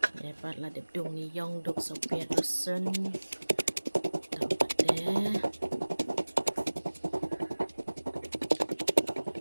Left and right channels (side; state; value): both; inverted; correlation -1.00